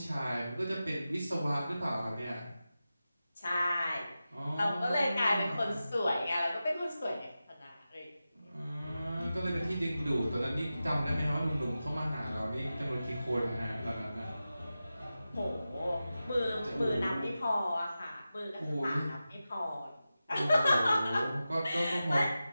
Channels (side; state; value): both; inverted; correlation -0.93